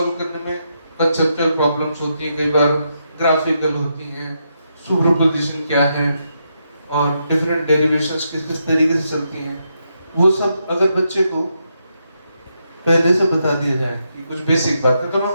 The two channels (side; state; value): both; inverted; correlation -0.82